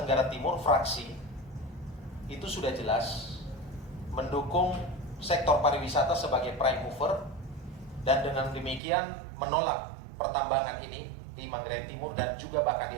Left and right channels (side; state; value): left; drops out; at 8.8 s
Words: Tenggara Timur fraksi itu sudah jelas mendukung sektor pariwisata sebagai prime mover, dan dengan demikian menolak pertambangan ini di Manggarai Timur dan juga bahkan